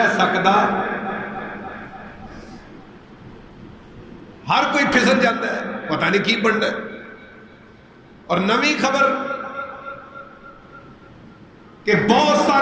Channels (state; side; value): identical; both; correlation 1.00